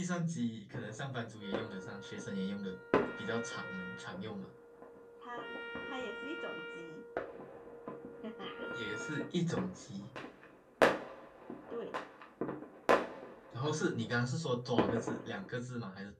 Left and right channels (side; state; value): both; identical; correlation 1.00